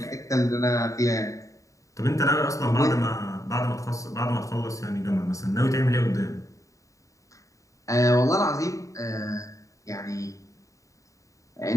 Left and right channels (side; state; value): right; late; 0.16 ms